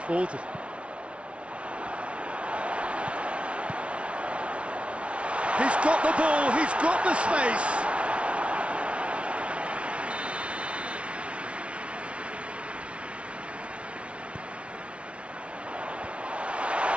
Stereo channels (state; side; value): late; left; 0.061 ms